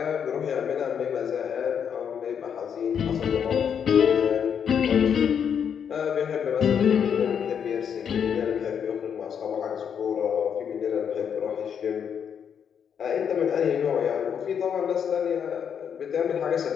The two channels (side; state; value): right; quieter; 7.8 dB